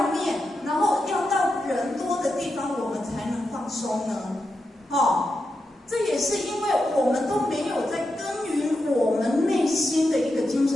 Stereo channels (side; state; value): both; normal; correlation 0.87